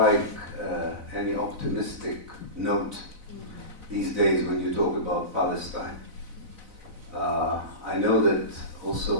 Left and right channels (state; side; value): late; left; 4.0 ms